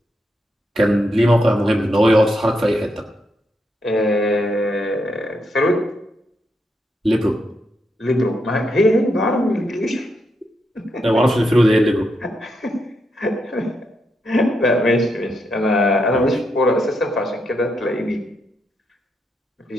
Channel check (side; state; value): both; normal; correlation 0.81